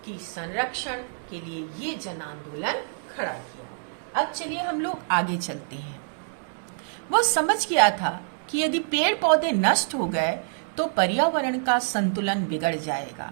की संरक्षण के लिए ये जन आंदोलन खड़ा किया। अब चलिए हम लोग आगे चलते हैं। वो समझ गया था कि यदि पेड़ पौधे नष्ट हो गए तो पर्यावरण का संतुलन बिगड़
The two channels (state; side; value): silent; left; digital silence